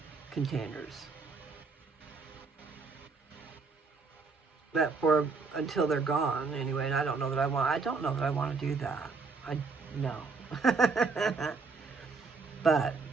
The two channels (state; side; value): quieter; left; 4.5 dB